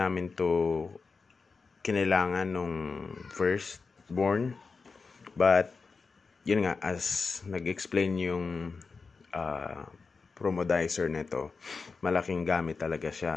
to kinailangan nung first born. But, yun nga, as nag-explain yung promodizer nito, malaking gamit talaga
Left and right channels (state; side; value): quieter; right; 4.6 dB